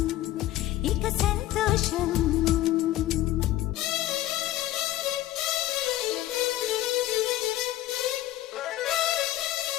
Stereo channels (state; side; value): quieter; right; 14.8 dB